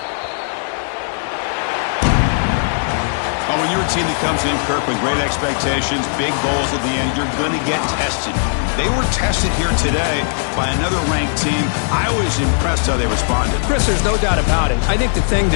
Well, when you're a team that comes in, Kirk, with great expectations, big goals at the end, you're going to get tested. They were tested here today by another ranked team. I was impressed how they responded. Chris, there's no doubt about it. I think the thing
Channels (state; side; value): silent; right; digital silence